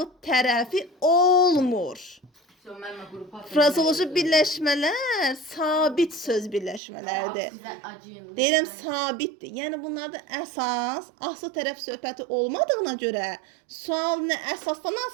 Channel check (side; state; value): left; drops out; at 6.8 s